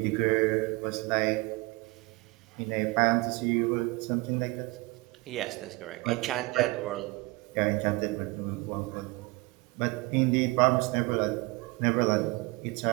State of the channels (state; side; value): quieter; left; 24.0 dB